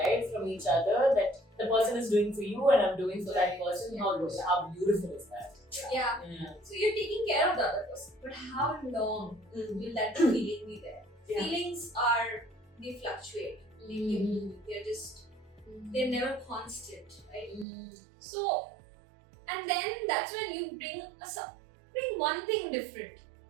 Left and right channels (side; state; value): left; drops out; at 17.7 s